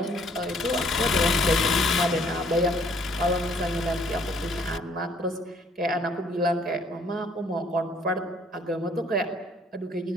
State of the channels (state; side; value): normal; both; correlation 0.62